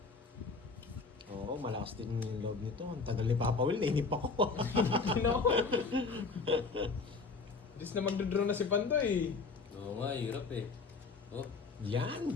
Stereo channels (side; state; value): right; quieter; 4.5 dB